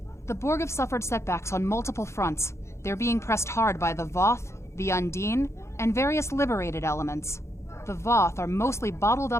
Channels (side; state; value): right; late; 0.13 ms